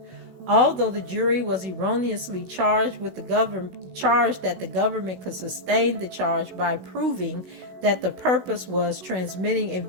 Although the jury was erroneously charged that the government could sustain the charge by proving that the purpose was transmitting a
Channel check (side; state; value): left; late; 16 ms